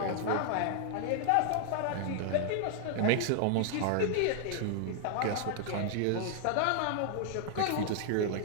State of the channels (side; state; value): both; different; correlation -0.01